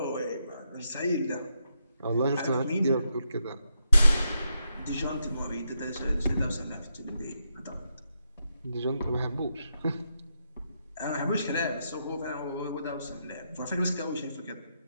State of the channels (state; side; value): inverted; both; correlation -0.83